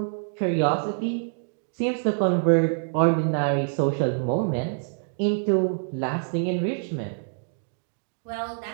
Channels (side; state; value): left; silent; digital silence